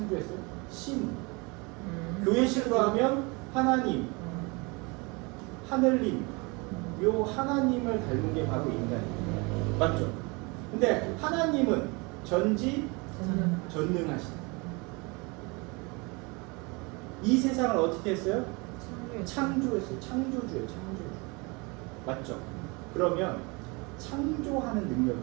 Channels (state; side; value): quieter; left; 28.1 dB